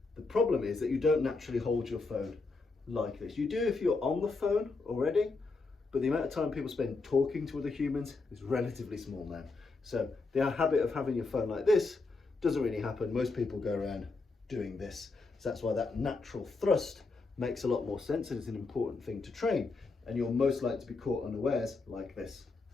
The problem is that you don't naturally hold your phone like this. You do if you're on the phone already, but the amount of time people spend talking to other humans is relatively small now. So the habit of having your phone like this doesn't really happen. Most people go around doing this. So that's why that natural thrust makes a lot more sense, and it's an important thing to train. And you're most likely to be caught unawares like this.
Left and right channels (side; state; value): right; quieter; 3.8 dB